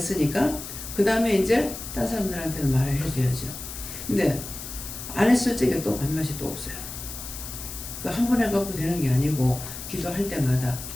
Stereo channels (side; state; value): left; noise; hiss, 10 dB below the sound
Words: 그 다음에 이제 딴 사람들한테도 말을 해줘야죠. 근데 안 했을 적에 또 밥맛이 또 없어요. 한 번 해갖고 되는 게 아니고 기도할 때마다.